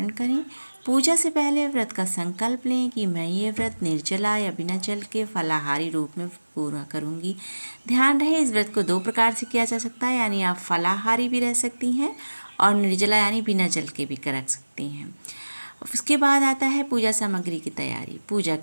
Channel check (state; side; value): inverted; both; correlation -1.00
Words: करें। पूजा से पहले व्रत का संकल्प लें कि मैं ये व्रत निर्जला या बिना जल के फलाहारी रूप में पूरा करूँगी। ध्यान रहे, इस व्रत को दो प्रकार से किया जा सकता है, यानी आप फलाहारी भी रह सकती हैं और निर्जला यानी बिना जल के भी कर सकती हैं। उसके बाद आता है पूजा सामग्री की तैयारी। पूजा